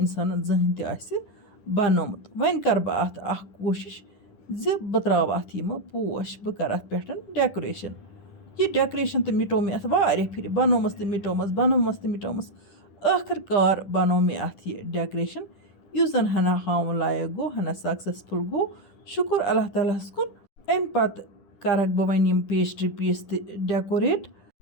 زٕہٕنۍ تہِ آسہِ بَنومُت وۄنۍ کَرٕ بہٕ اَتھ اَکھ کوٗشِش زِ بہٕ ترٛاوٕ اَتھ یِمہٕ پوش بہٕ کَرٕ اَتھ پٮ۪ٹھ ڈٮ۪کُریشَن یہِ ڈٮ۪کُریشَن تہٕ مِٹو مےٚ اَتھ واریاہ پھِرِ بَنومَس تہٕ مِٹومَس ٲخٕر کار بَنوو مےٚ اَتھ یہِ ڈٮ۪کُریشَن یُس زَن ہَنا ہاوُن لایق گوٚو ہَنا سَکسَسفُل گوٚو شُکُر اللہ تعالیٰ ہَس کُن اَمہِ پَتہٕ کَرَکھ بہٕ وۄنۍ یِم پیسٹری پیٖس تہِ ڈٮ۪کوریٹ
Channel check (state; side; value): late; right; 10 ms